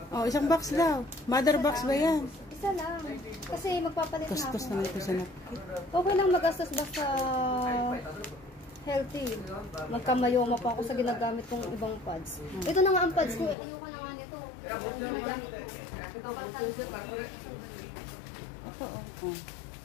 Oh, isang box daw. Mother box ba yan? Isa lang. Kasi magpapalit na ako. Kustos naman ito sa napkin. Okay lang mag-gastos basta healthy. Magkamayoma pa ako sa ginagamit kong ibang pads. Ito na nga ang pads ko. Ayoko na nga nito. Ang ginagamit ko. Ito, oh.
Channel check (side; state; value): right; drops out; at 13.6 s